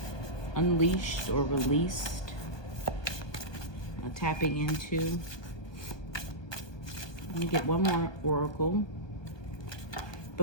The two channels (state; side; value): late; right; 1.2 ms